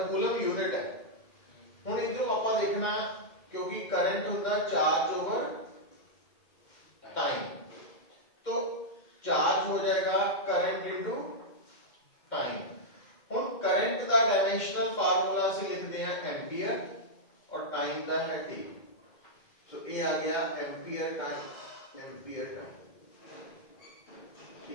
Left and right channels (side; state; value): right; late; 2.1 ms